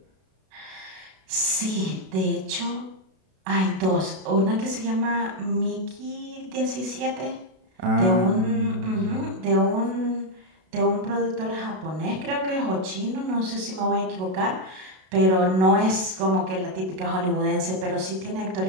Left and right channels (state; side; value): late; left; 32 ms